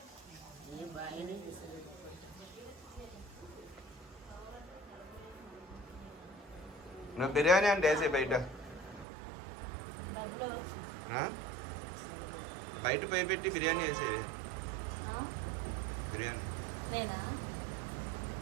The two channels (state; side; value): drops out; left; at 9.1 s